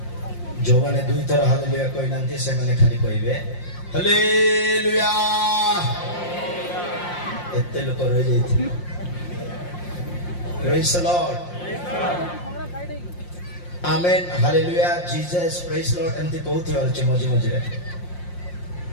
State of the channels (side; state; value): right; late; 5.7 ms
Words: जो माने दुई थर हालेलुया कहि नांती से माने खाली कहिबे हालेलुया। एते लोक रह जाइथि। Praise the Lord amen hallelujah Jesus praise Lord एमती कहउथि अछि मझे मझे